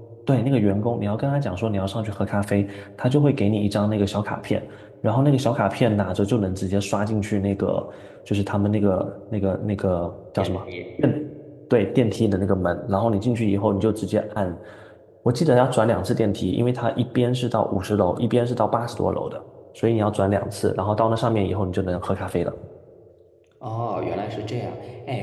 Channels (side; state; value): both; identical; correlation 1.00